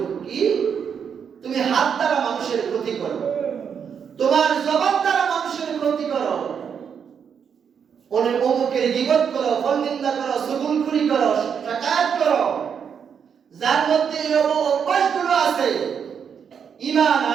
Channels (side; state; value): left; quieter; 7.3 dB